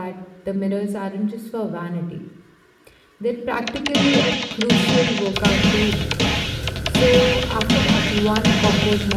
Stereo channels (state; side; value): identical; both; correlation 1.00